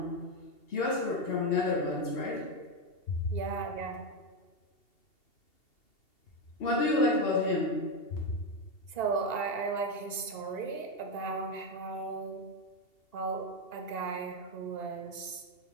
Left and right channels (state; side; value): late; right; 2.7 ms